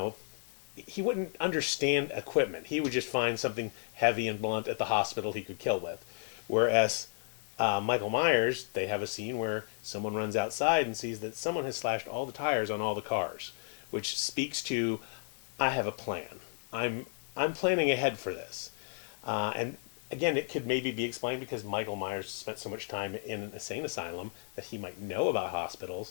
he wouldn't understand equipment. He would just find something heavy and blunt at the hospital he could kill with. Whereas Michael Myers, they have a scene where someone runs outside and sees that someone has slashed all the tires on all the cars, which speaks to, I have a plan. I'm planning ahead for this. And again, it could maybe be explained because Michael Myers spent so much time in an insane asylum that he might know about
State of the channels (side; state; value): right; silent; digital silence